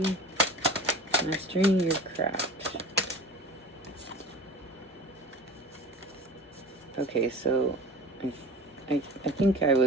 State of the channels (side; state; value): both; normal; correlation 0.38